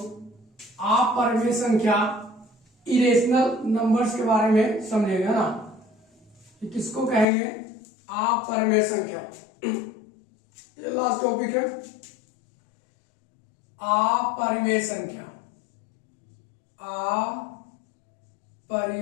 अपरमेय संख्या, इरेशनल नंबर्स के बारे में समझेंगे, है ना। कि किसको कहेंगे, अपरमेय संख्या। ये लास्ट टॉपिक है, अपरमेय संख्या।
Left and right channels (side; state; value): right; drops out; at 7.2 s